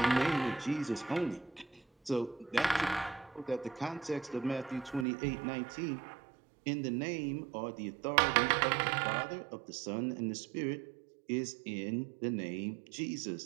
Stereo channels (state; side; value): drops out; left; at 5.1 s